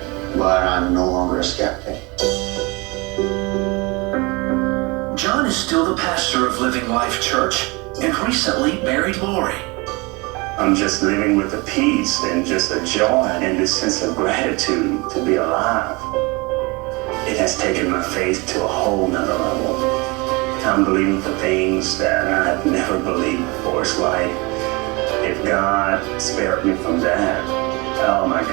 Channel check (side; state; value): left; quieter; 26.7 dB